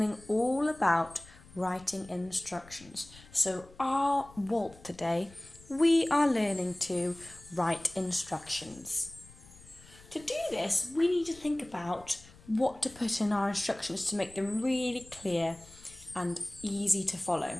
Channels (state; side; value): noise; left; rumble, 22 dB below the sound